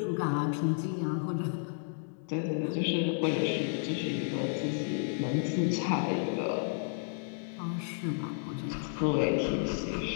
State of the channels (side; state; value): right; silent; digital silence